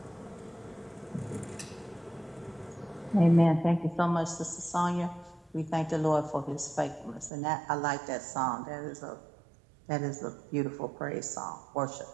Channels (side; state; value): left; drops out; at 7.3 s